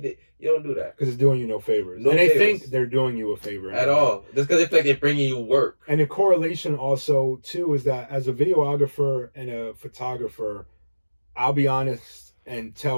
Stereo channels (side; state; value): both; inverted; correlation -1.00